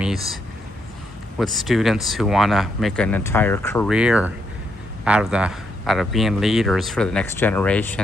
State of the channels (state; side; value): normal; both; correlation 0.77